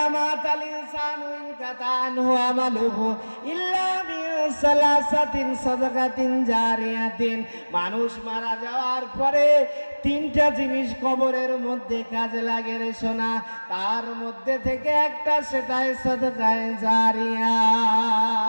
মাতাল ইনসানু ইনকাতা আনহু আমালুহু ইল্লা বিসালাসাতিন সাদাকাতিন জারিয়াতিন। মানুষ মারা যাওয়ার পরে 3টা জিনিস কবরের মধ্যে কাজে লাগে রে সোনা, তার মধ্যে থেকে একটা সেটাই সাদাকায়ে জারিয়া।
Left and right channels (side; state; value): both; inverted; correlation -1.00